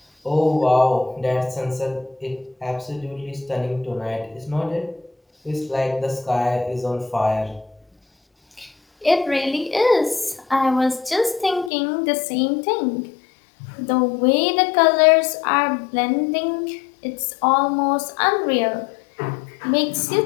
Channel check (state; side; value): drops out; right; at 11.7 s